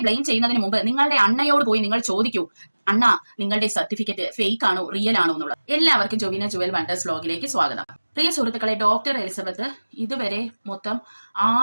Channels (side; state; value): both; inverted; correlation -1.00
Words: ബ്ലെയിം ചെയ്യുന്നതിന് മുമ്പ് നിങ്ങളുടെ അണ്ണയോട് പോയി നിങ്ങൾ ചോദിക്കൂ, അണ്ണ നിങ്ങളുടെ സർട്ടിഫിക്കറ്റ് ഫേക്ക് ആണോ റിയൽ ആണോ എന്നുള്ളത്. എല്ലാവർക്കും ജോവിന ജുവൽ വണ്ടേഴ്സ് വ്ലോഗിലേക്ക് സ്വാഗതം. പ്രിയ സുഹൃത്തുക്കളെ, ഡോക്ടർ എലിസബത്ത് ഇതുവരെ മൊത്തം